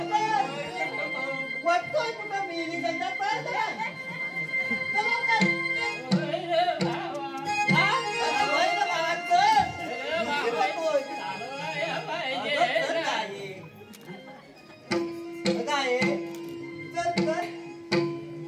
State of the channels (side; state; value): both; identical; correlation 1.00